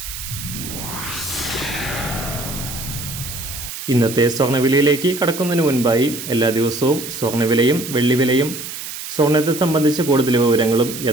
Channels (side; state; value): right; noise; hiss, 9 dB below the sound